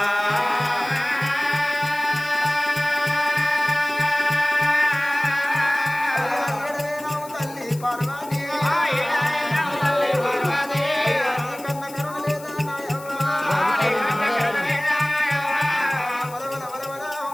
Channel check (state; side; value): noise; left; hiss, 18 dB below the sound